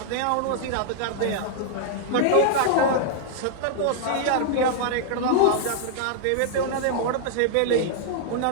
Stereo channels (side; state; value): both; different; correlation -0.01